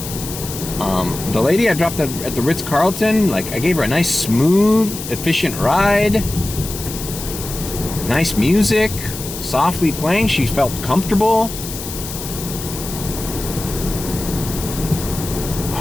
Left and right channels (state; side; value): noise; left; hiss, 9 dB below the sound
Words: The lady I dropped at the Ritz-Carlton, like, I gave her a nice, smooth, efficient ride. Nice music, softly playing. She felt comfortable.